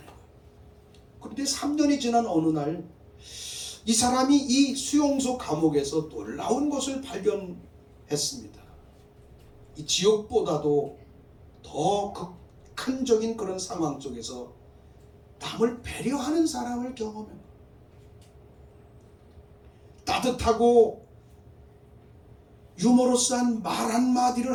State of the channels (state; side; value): identical; both; correlation 1.00